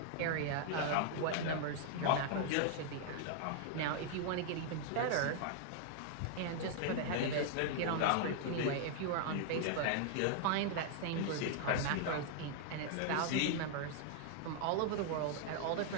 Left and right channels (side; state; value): both; different; correlation 0.00